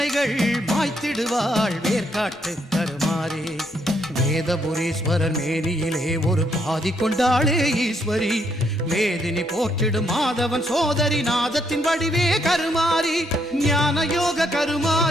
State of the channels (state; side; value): normal; both; correlation 0.73